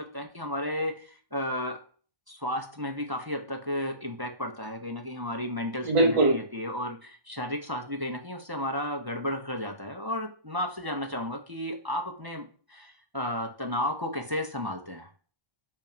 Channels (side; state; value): left; late; 1.0 ms